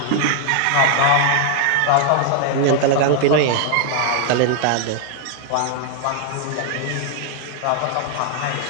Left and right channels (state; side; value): different; both; correlation 0.00